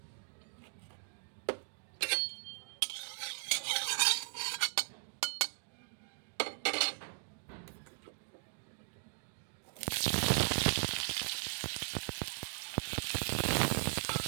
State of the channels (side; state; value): left; silent; digital silence